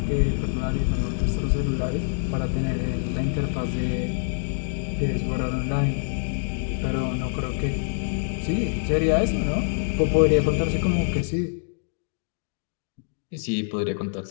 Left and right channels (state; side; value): silent; right; digital silence